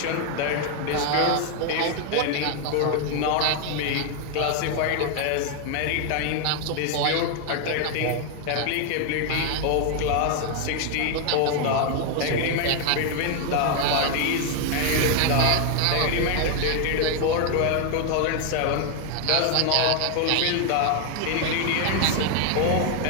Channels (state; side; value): different; both; correlation 0.01